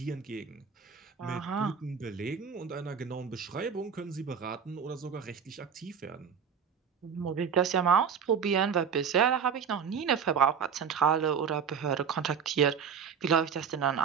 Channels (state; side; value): quieter; left; 6.9 dB